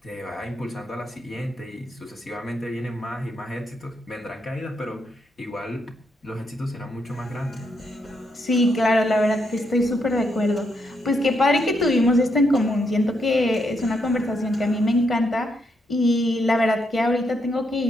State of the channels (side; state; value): both; normal; correlation 0.79